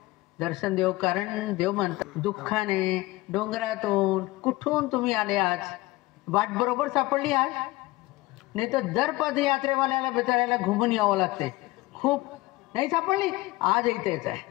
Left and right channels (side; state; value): right; quieter; 20.0 dB